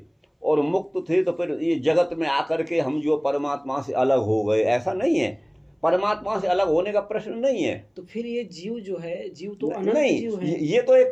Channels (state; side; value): identical; both; correlation 1.00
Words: और मुक्त थे तो फिर ये जगत में आकर के हम जो परमात्मा से अलग हो गए, ऐसा नहीं है। परमात्मा से अलग होने का प्रश्न नहीं है। तो फिर ये जीव जो है, जीव तो अनंत नहीं, जीव है। ये तो एक